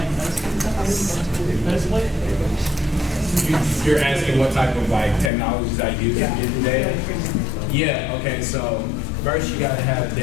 best play? You're asking what type of like technologies I use to get the data? Yeah, okay, so first you gotta have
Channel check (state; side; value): drops out; right; at 5.3 s